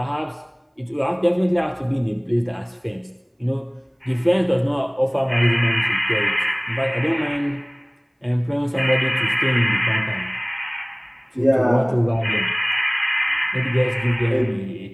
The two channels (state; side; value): identical; both; correlation 1.00